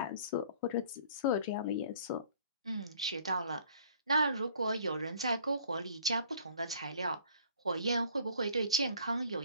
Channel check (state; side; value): inverted; both; correlation -0.54